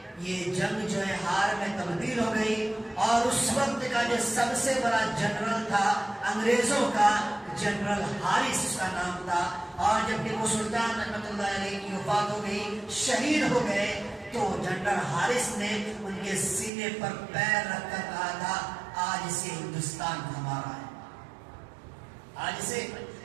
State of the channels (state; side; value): drops out; left; at 16.7 s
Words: یہ جنگ جو ہے ہار میں تبدیل ہو گئی. اور اس وقت کا جو سب سے بڑا جنرل تھا انگریزوں کا، جنرل ہارس اس کا نام تھا. اور جب ٹیپو سلطان رحمۃ اللہ علیہ کی وفات ہو گئی، شہید ہو گئے، تو جنرل ہارس نے ان کے سینے پر پیر رکھ کر کہا تھا آج سے ہندوستان ہمارا ہے، آج سے